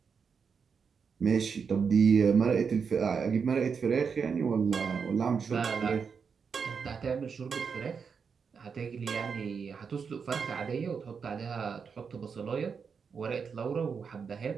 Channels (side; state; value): left; quieter; 6.0 dB